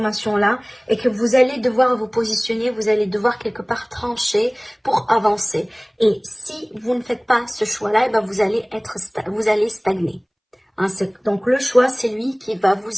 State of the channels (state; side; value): identical; both; correlation 1.00